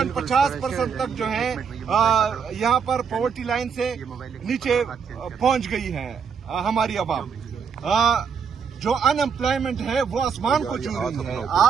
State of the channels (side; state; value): left; quieter; 6.4 dB